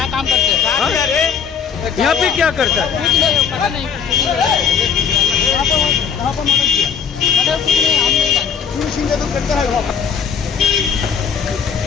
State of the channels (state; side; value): quieter; right; 6.9 dB